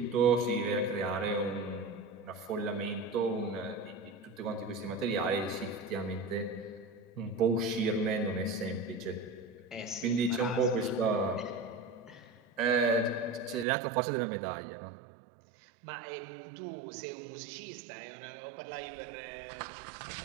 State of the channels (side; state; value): left; drops out; at 13.7 s